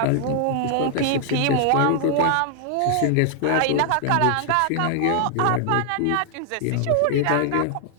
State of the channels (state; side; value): different; both; correlation 0.00